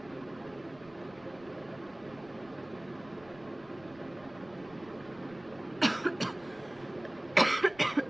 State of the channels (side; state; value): right; noise; rumble, 23 dB below the sound